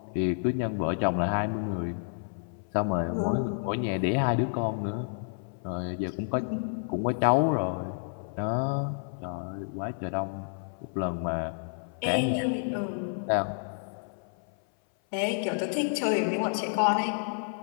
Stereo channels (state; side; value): silent; right; 58 dB below the other